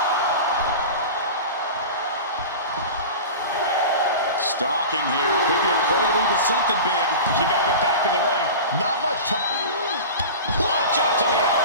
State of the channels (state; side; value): inverted; both; correlation -0.32